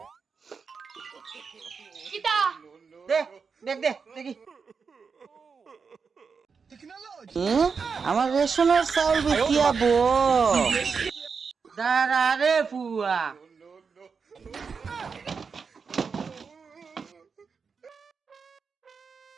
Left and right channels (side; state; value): left; quieter; 5.5 dB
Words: কিতা দে দেখ দে দেখি আমার রেশনের চাউল বিকিয়াবো দাঁড়া রে ফুয়া